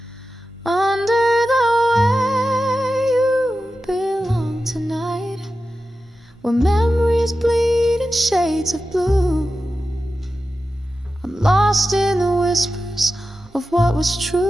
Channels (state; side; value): normal; both; correlation 0.92